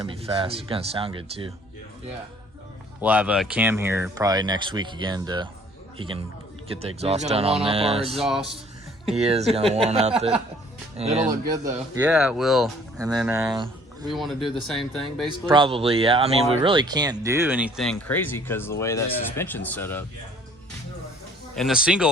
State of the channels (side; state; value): both; normal; correlation 0.56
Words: to be fast. It's going to sound good too. Yeah. We'll have a Cam here probably next week again he can get the exhaust done on this. He's going to one-up our exhaust. He is going to one-up it. It'll look good though. Yeah, it will. And then we want to do the same thing basically? Probably, yeah. I mean, we really can't do anything crazy because of the way that suspension's set up. And the